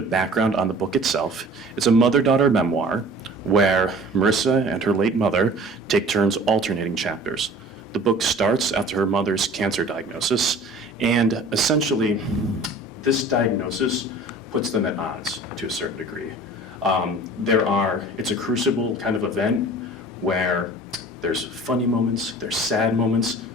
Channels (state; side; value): normal; both; correlation 0.44